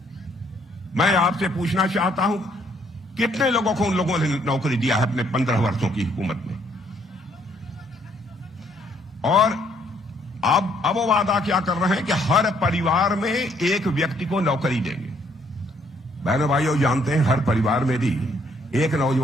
मैं आपसे पूछना चाहता हूं, कितने लोगों को उन लोगों ने नौकरी दिया है अपने 15 वर्षों की हुकूमत में? और अब वो वादा क्या कर रहे हैं कि हर परिवार में एक व्यक्ति को नौकरी देंगे। बहनों भाइयों, जानते हैं हर परिवार में भी एक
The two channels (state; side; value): normal; both; correlation 0.67